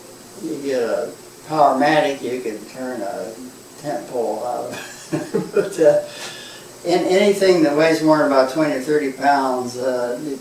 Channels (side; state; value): both; identical; correlation 1.00